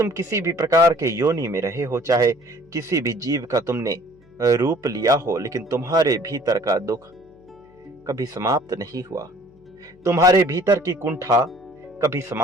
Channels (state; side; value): noise; left; hum, 29 dB below the sound